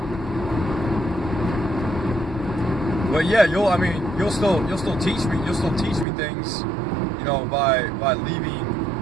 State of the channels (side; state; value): left; drops out; at 6.1 s